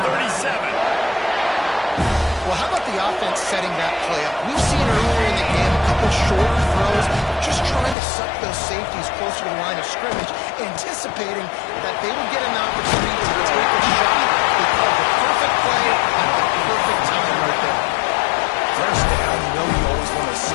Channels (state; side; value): drops out; right; at 8.0 s